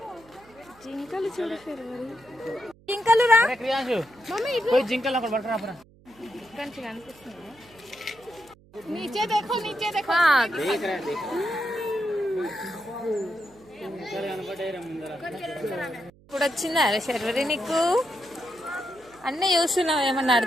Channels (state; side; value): noise; right; hum, 27 dB below the sound